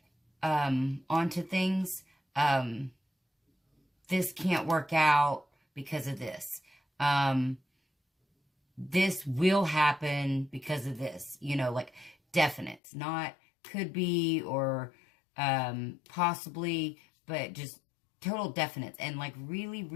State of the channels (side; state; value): right; drops out; at 12.8 s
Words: onto things. This can't work out because of this. This will happen because of this. You know, like definites, not could be or possibly, but just total definites. And like really,